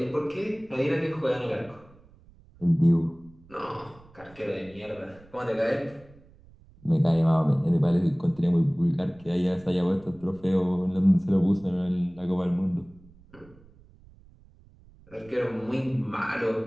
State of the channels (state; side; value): noise; right; rumble, 26 dB below the sound